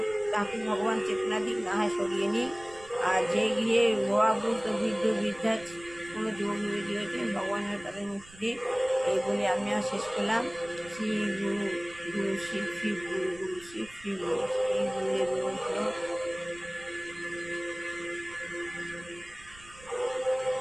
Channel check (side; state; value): right; noise; rumble, 22 dB below the sound